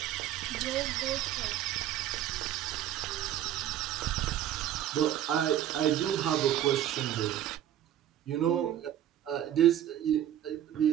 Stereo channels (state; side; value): quieter; left; 11.6 dB